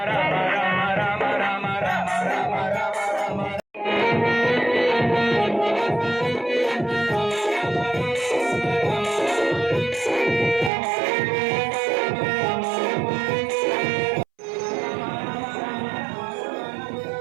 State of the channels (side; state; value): left; drops out; at 10.7 s